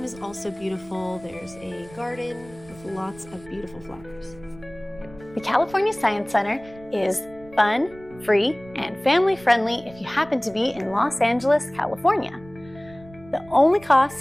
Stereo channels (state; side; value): noise; right; rumble, 21 dB below the sound